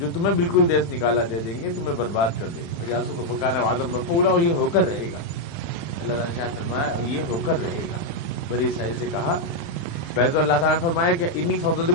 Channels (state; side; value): late; right; 36 ms